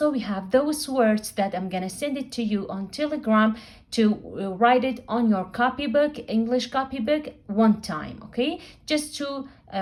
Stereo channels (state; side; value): identical; both; correlation 1.00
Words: we have those words that I'm gonna send it to you on Telegram to write it on your copybook, English copybook, one time, okay? Just to